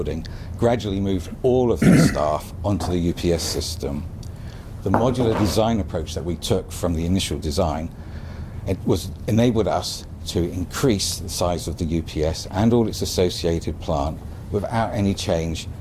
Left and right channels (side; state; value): both; identical; correlation 1.00